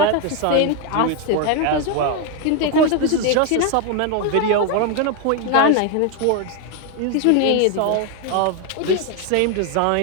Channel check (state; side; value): different; both; correlation 0.01